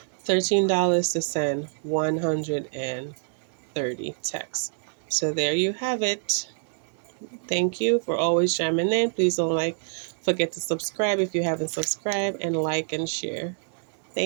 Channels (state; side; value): silent; left; digital silence